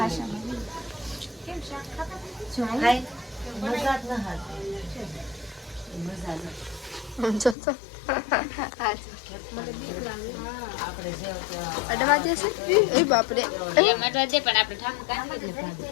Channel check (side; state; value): right; drops out; at 7.6 s